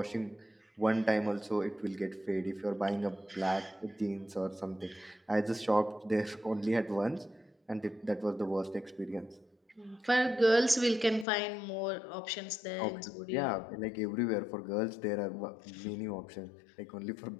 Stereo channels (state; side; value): drops out; right; at 11.2 s